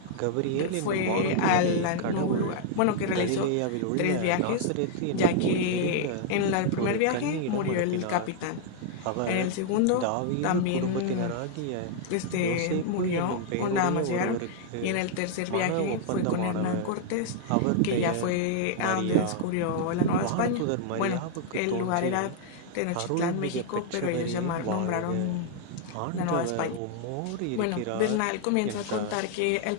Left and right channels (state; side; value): different; both; correlation -0.01